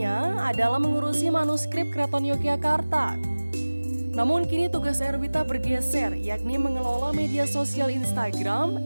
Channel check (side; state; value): both; inverted; correlation -1.00